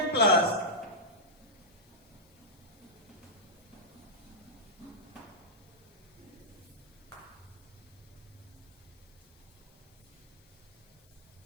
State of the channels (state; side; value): noise; left; hiss, 28 dB below the sound